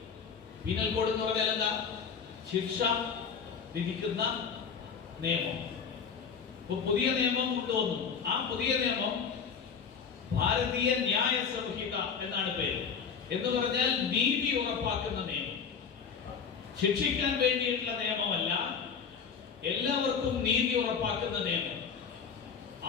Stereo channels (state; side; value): quieter; right; 6.3 dB